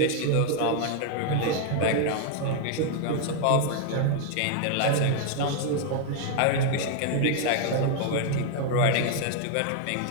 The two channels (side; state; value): both; different; correlation 0.00